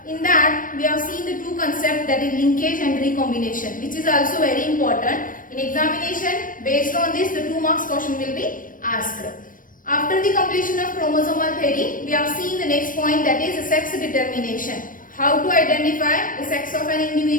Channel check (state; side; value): late; right; 0.40 ms